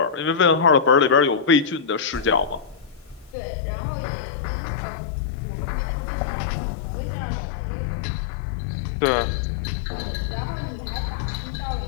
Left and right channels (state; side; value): drops out; right; at 3.4 s